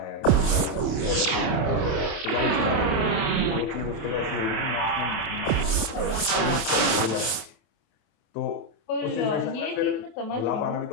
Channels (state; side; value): late; right; 27 ms